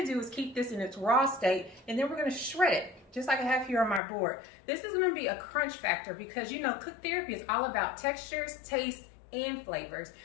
do is keep this in its raw state, and then we're going to shred it just like I have here on my board. This is going to be a crunch factor because you know cook therapy is all about textures, taste, and flavors.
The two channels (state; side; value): drops out; right; at 4.0 s